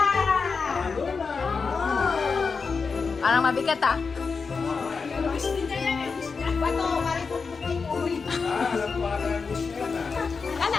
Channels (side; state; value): right; quieter; 5.0 dB